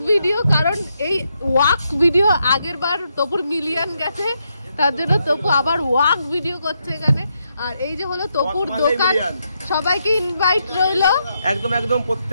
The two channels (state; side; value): inverted; both; correlation -0.81